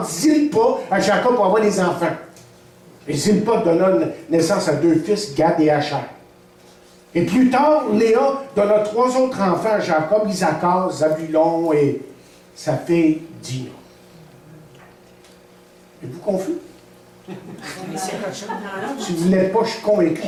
Zilpa à Jacob pour avoir des enfants. Et Zilpa donna naissance à 2 fils, Gad et Asher. Et plus tard, Léa donna 3 autres enfants à Jacob, Isaacar, Zabulon et sa fille Dina. Êtes-vous confus? Si vous ne l'êtes pas, je suis convaincu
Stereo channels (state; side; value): identical; both; correlation 1.00